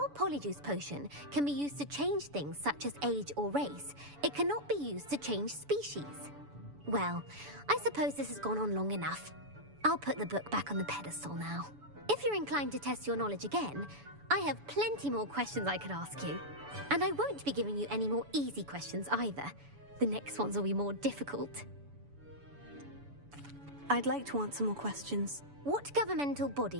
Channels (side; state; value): left; late; 7.0 ms